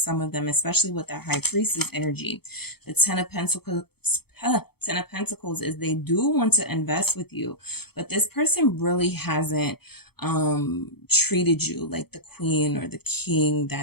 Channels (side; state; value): right; late; 0.96 ms